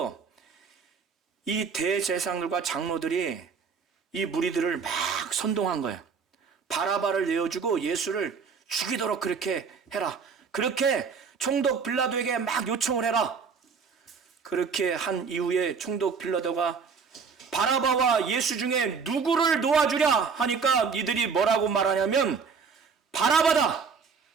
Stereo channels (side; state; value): left; quieter; 5.7 dB